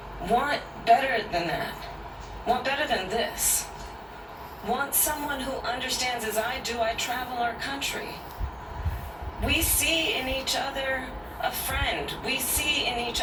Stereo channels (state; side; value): identical; both; correlation 1.00